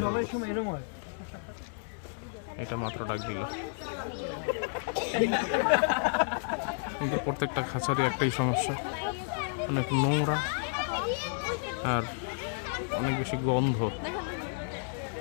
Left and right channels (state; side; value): silent; right; digital silence